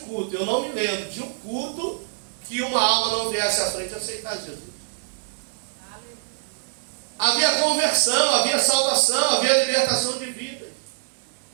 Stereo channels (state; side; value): silent; left; digital silence